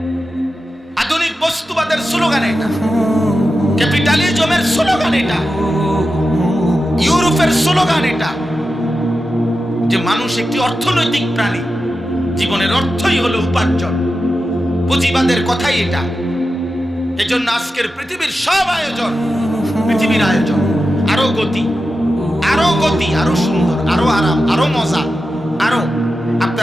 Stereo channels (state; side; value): normal; both; correlation 0.91